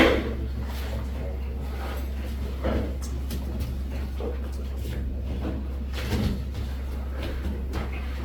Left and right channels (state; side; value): identical; both; correlation 1.00